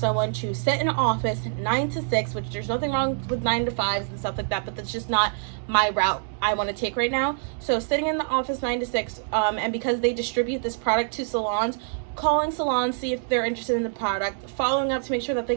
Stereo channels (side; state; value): left; silent; 61 dB below the other